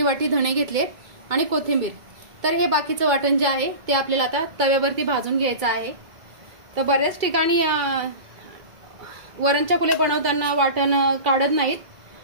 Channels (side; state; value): left; late; 2.3 ms